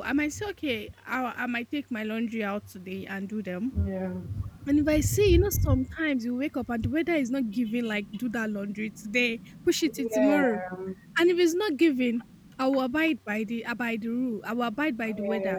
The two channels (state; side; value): identical; both; correlation 1.00